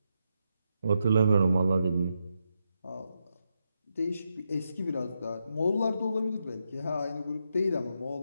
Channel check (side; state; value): both; inverted; correlation -0.84